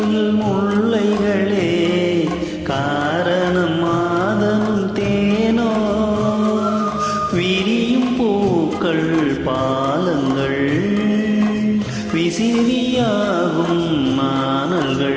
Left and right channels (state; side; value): identical; both; correlation 1.00